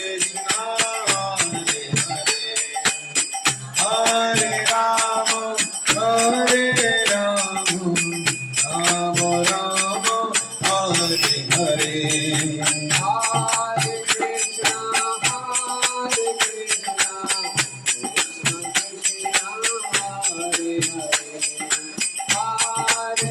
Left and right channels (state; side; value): identical; both; correlation 1.00